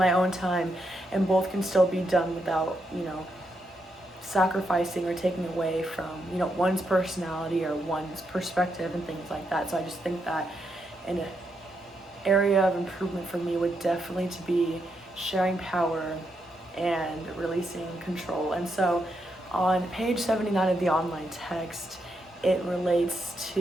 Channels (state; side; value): normal; both; correlation 0.81